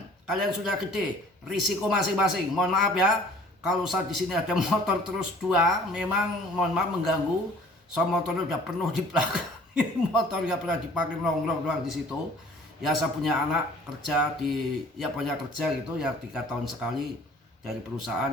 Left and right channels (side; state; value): both; normal; correlation 0.51